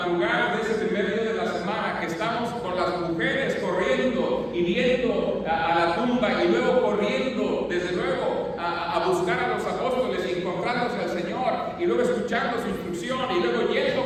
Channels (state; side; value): identical; both; correlation 1.00